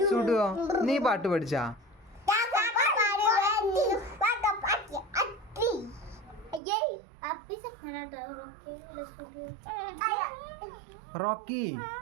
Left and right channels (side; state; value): left; drops out; at 6.6 s